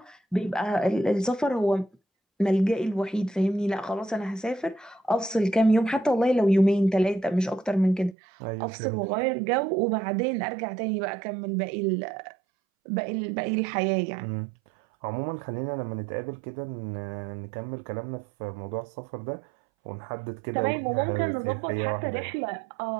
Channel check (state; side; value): drops out; left; at 8.2 s